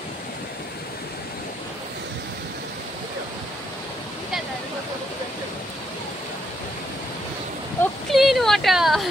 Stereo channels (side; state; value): both; normal; correlation 0.76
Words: ও ক্লিন ওয়াটার।